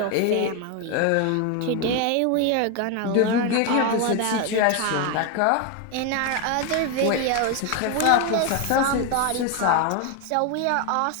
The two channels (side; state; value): both; different; correlation 0.01